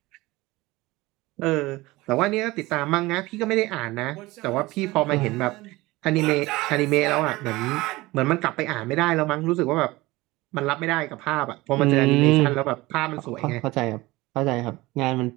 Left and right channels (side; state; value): left; quieter; 20.2 dB